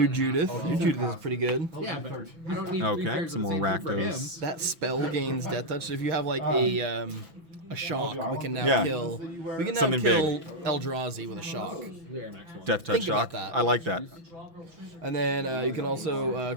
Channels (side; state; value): left; late; 6.0 ms